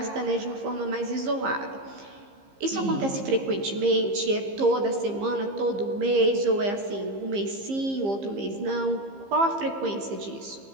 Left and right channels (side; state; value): left; late; 15 ms